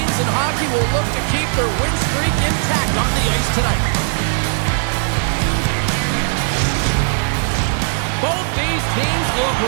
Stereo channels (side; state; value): left; silent; 67 dB below the other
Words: in hockey will look to keep their win streak intact on the ice tonight. Both these teams look